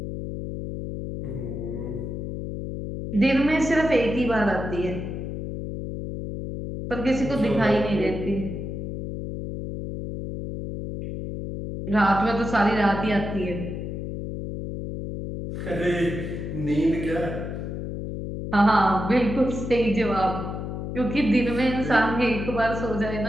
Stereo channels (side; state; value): left; noise; hum, 6 dB below the sound